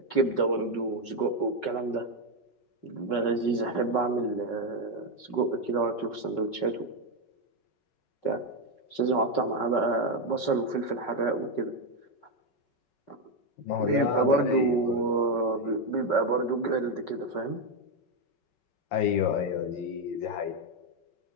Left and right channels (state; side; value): late; right; 5.4 ms